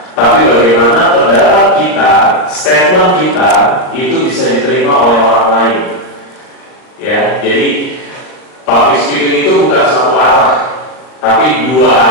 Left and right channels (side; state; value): right; late; 38 ms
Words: tapi bagaimana pendapat kita, statement kita itu bisa diterima oleh orang lain. Ya, jadi public speaking itu bukan satu arah, tapi dua